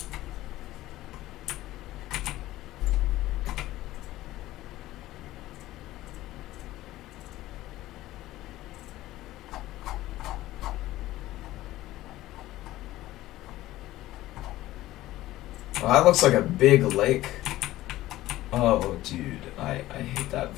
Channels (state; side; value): quieter; right; 16.0 dB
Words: Well, that looks like a big lake. Oh, dude, I hate that